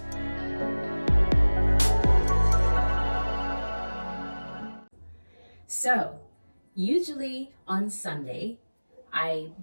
So usually on Sunday I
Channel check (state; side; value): inverted; both; correlation -1.00